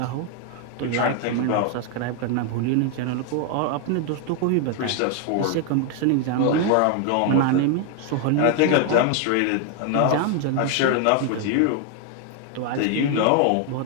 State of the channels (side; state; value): both; different; correlation 0.00